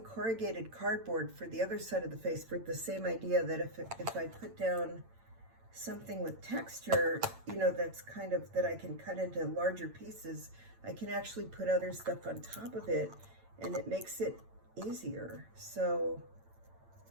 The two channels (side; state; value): left; late; 8.9 ms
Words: corrugated cardboard for the other side of the face for the same idea that if I put down something with texture, you know, that's kind of, that I can cut into larger pieces, I can actually put other stuff on top of it, and it makes it easier. So